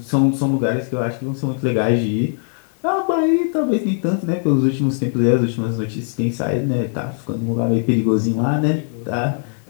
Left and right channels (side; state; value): right; silent; 66 dB below the other